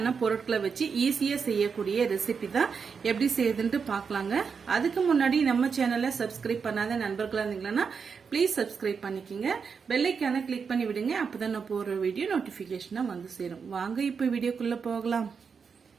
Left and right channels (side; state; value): left; quieter; 5.9 dB